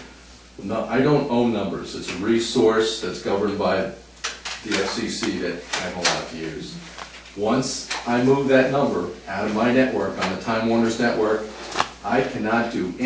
No, I don't own numbers. It's a resource that's governed by the FCC that I'm allowed to use. Once I move that number out of my network, on the Time Warner's network, I cannot do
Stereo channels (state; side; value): identical; both; correlation 1.00